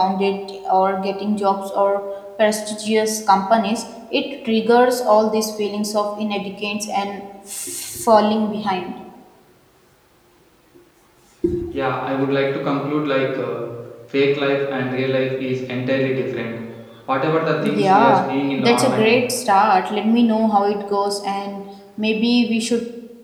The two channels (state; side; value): identical; both; correlation 1.00